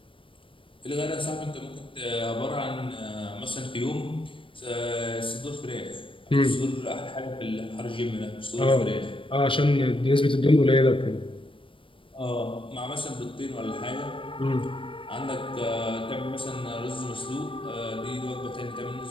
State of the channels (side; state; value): right; late; 0.25 ms